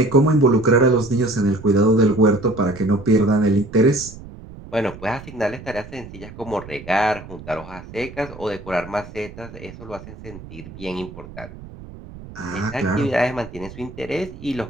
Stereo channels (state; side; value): noise; right; rumble, 16 dB below the sound